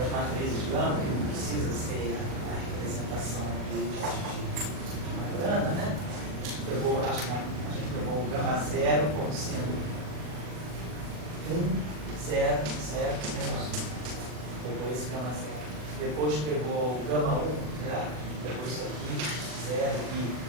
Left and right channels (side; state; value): left; late; 40 ms